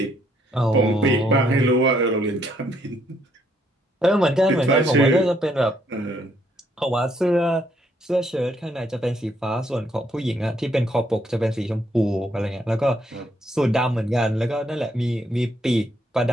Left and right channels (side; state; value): both; normal; correlation 0.71